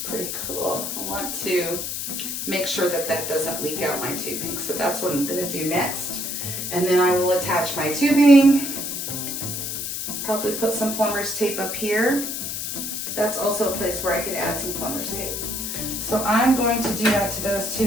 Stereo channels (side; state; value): left; noise; hiss, 4 dB below the sound